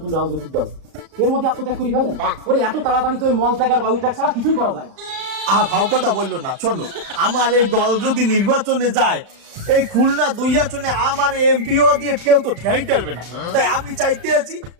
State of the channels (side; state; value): left; late; 35 ms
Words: রাজনৈতিক দল, এর মধ্যে আত্মত্যাগ করে ফেলেন? ওরে এত তাড়াতাড়ি তো মল ত্যাগ আর বায়ু ত্যাগ ছাড়া কিছুই করা যায় না। ভাও কথা বললো না। শোনো, আমার এই দল যদি নির্বাচনে যায়, এই খুলনা 2 আসনে আমার এমপিও দিয়ে কেউ তো ঠেই টারবে না। তাই আমি চাইতে আছি